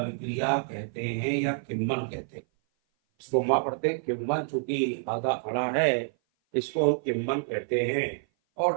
कहते हैं या किण्वन कहते हैं। इसको हम पढ़ते हैं किण्वन, चूंकि आधा अड़ा है इसको हम किण्वन कहते हैं।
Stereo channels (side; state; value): left; silent; 56 dB below the other